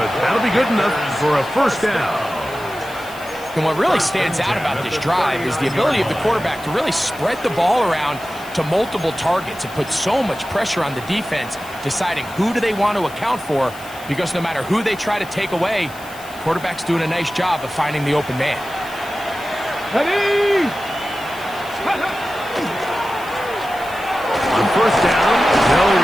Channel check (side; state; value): left; noise; hiss, 19 dB below the sound